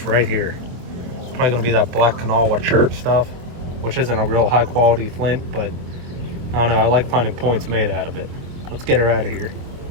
right here. It's probably gonna be that black Kanawha church stuff, which isn't a real high quality flint, but I don't know, I like finding points made out of it. Let's get her out of here.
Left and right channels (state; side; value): late; left; 24 ms